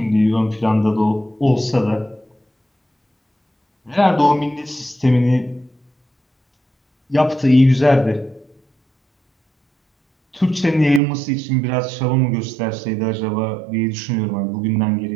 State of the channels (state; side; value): drops out; left; at 11.0 s